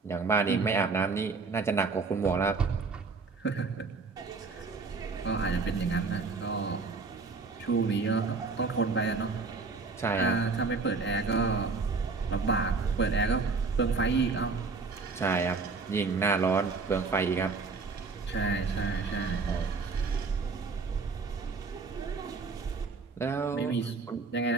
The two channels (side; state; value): left; quieter; 4.4 dB